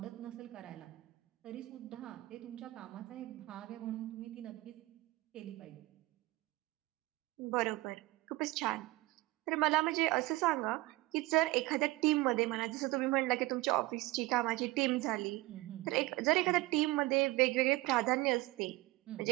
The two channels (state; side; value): quieter; left; 19.7 dB